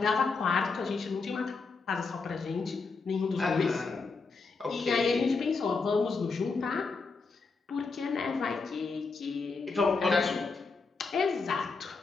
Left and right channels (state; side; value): quieter; right; 4.4 dB